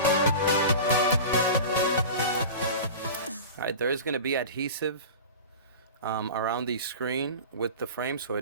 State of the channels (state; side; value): inverted; both; correlation -0.33